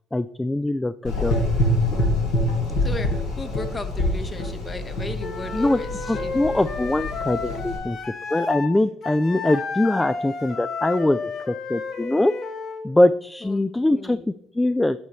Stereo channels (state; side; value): normal; both; correlation 0.82